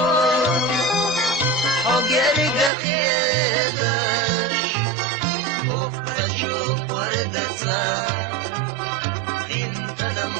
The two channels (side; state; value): left; drops out; at 2.7 s